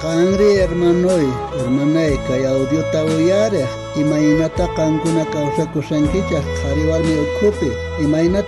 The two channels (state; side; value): identical; both; correlation 1.00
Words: Kangri hermanay kay audio tawuyareh imaynata kankuna kawsakusankichaq qhariwarmi ukhupi